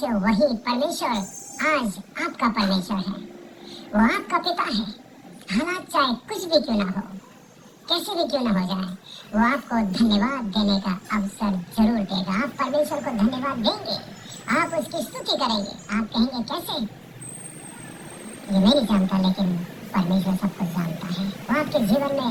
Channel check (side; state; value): both; identical; correlation 1.00